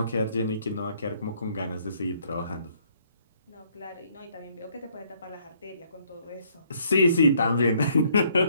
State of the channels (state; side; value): inverted; both; correlation -0.66